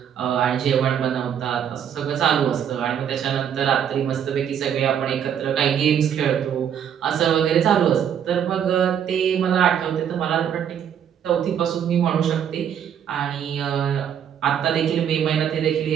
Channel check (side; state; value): left; quieter; 8.8 dB